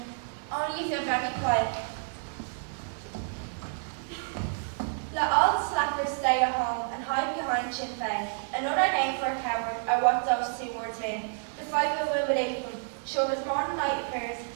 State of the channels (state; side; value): silent; left; digital silence